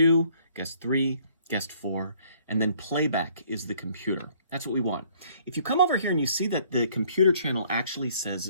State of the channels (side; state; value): both; inverted; correlation -0.61